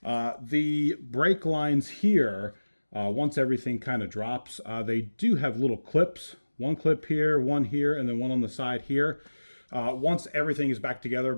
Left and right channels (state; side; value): inverted; both; correlation -1.00